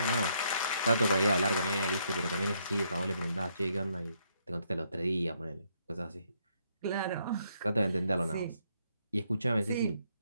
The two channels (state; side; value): inverted; both; correlation -0.73